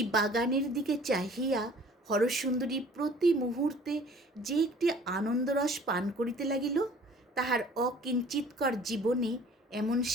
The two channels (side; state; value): both; normal; correlation 0.51